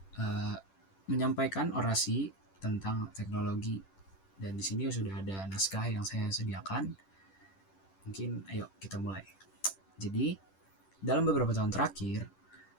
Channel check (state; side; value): late; right; 10 ms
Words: uh, menyampaikan orasi tentang teknologi. Dan di sini sudah ada naskah yang saya sediakan. Mungkin ayo kita mulai. Jadi, dalam beberapa tahun terakhir,